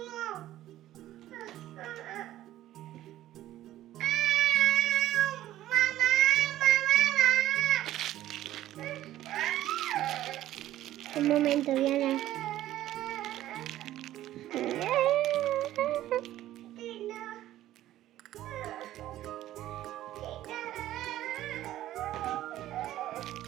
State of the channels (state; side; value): quieter; left; 13.8 dB